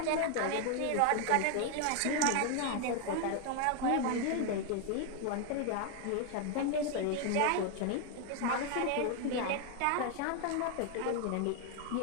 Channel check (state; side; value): different; both; correlation 0.01